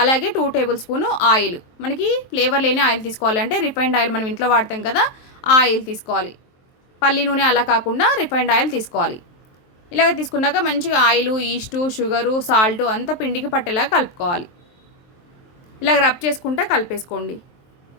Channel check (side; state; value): right; late; 23 ms